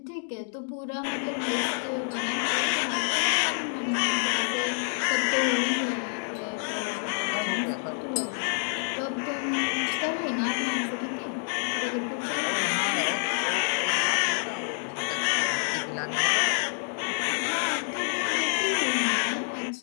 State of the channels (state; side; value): silent; right; 60 dB below the other